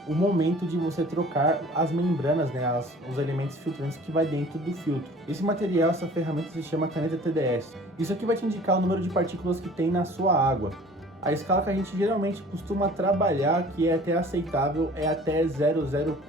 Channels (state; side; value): normal; both; correlation 0.48